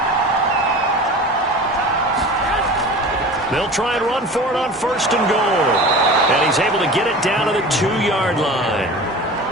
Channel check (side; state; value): both; normal; correlation 0.36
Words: They'll try and run for it on 1st and goal. And he's able to get it down to the 2-yard line.